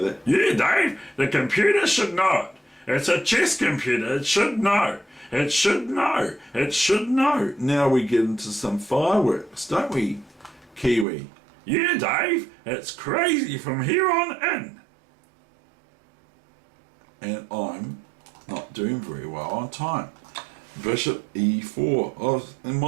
that. Yeah, Dave, the computer should know it. It's a chess computer, it should know. It should know. It should know. Now we get into some fireworks, don't we, Kiwi? Yeah, Dave, it's crazy from here on in. And I'm not doing very well on time. Bishop e4. And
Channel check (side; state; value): left; drops out; at 11.1 s